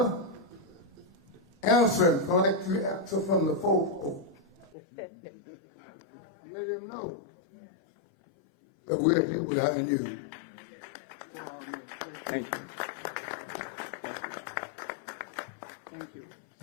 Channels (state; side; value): drops out; right; at 4.7 s